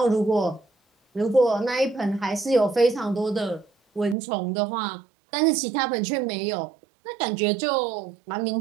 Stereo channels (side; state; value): left; drops out; at 4.2 s